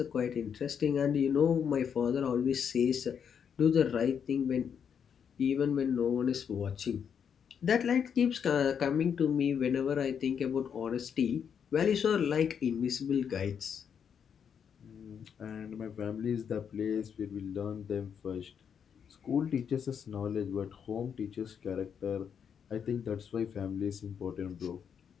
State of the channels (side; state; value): right; quieter; 7.5 dB